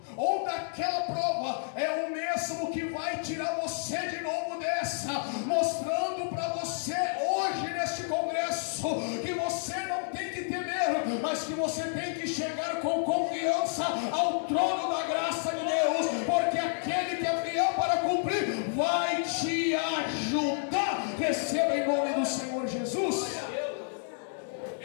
ou daquela prova, é o mesmo que vai tirar você de novo dessa, mostrando para você hoje neste congresso que você não tem que temer, mas que você tem que chegar com confiança ao trono da graça de Deus, porque aquele que é fiel para cumprir vai te ajudar. Receba em nome do Senhor Jesus.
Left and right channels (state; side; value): silent; right; digital silence